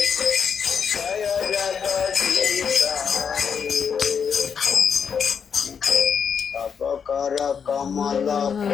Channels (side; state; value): right; quieter; 6.8 dB